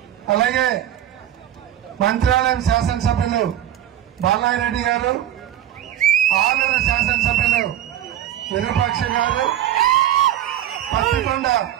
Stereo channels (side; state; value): left; quieter; 11.6 dB